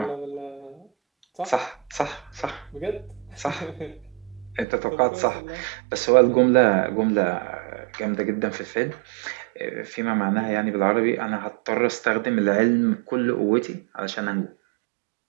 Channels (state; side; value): drops out; left; at 4.7 s